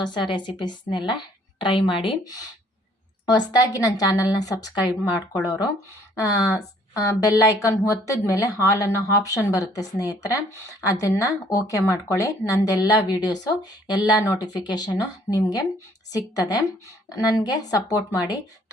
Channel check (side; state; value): both; normal; correlation 0.61